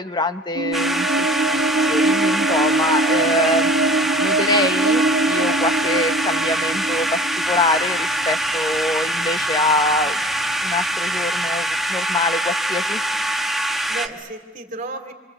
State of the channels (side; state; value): both; normal; correlation 0.45